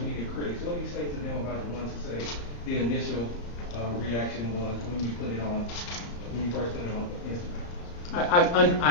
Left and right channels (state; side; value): late; right; 34 ms